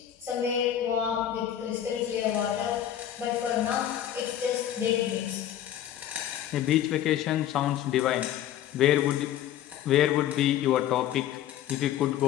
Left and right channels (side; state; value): right; quieter; 11.2 dB